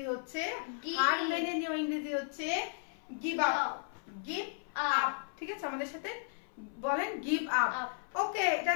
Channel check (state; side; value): silent; right; 55 dB below the other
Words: হচ্ছে, হার মেনে নেওয়া ইংরেজি হচ্ছে গিভ আপ। Give up. ঠিক আছে। আমাদের সাথে বলেন গিভ আপ। ওকে, এটা